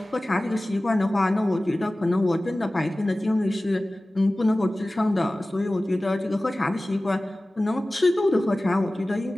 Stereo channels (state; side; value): normal; both; correlation 0.97